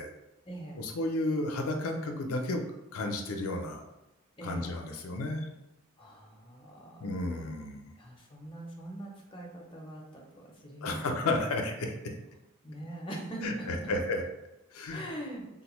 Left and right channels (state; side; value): normal; both; correlation 0.39